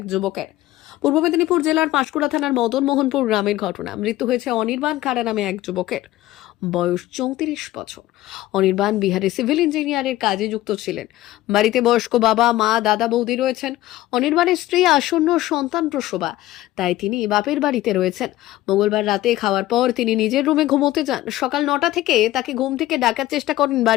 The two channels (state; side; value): quieter; right; 15.8 dB